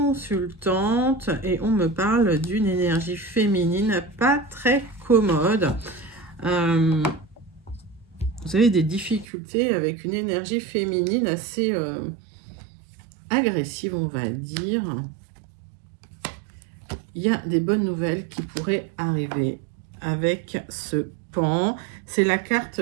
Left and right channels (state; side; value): drops out; left; at 9.2 s